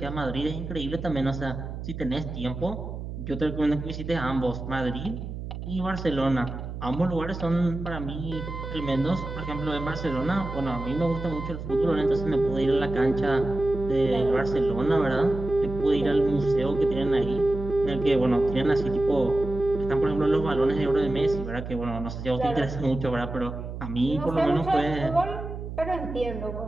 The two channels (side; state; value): right; noise; hum, 8 dB below the sound